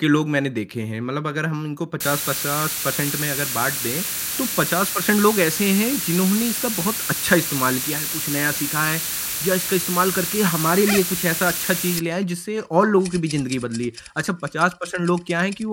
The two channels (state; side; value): identical; both; correlation 1.00